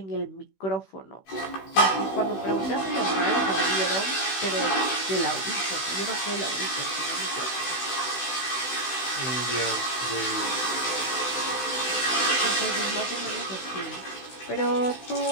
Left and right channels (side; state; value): right; late; 16 ms